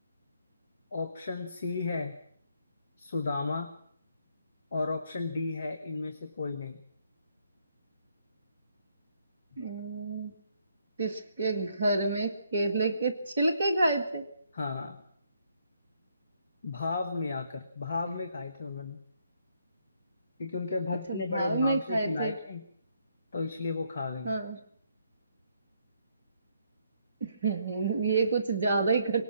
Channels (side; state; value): both; inverted; correlation -0.71